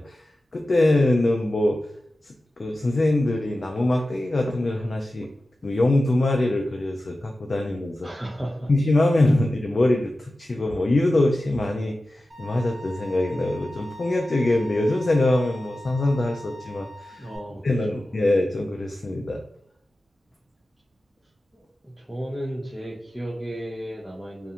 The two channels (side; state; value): both; normal; correlation 0.94